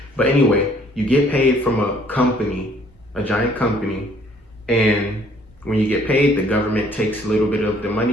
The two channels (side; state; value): both; normal; correlation 0.61